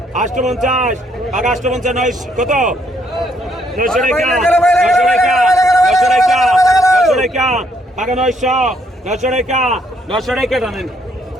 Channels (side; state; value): both; normal; correlation 0.70